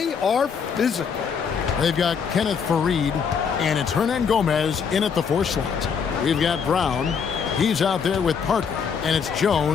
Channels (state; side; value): quieter; right; 6.5 dB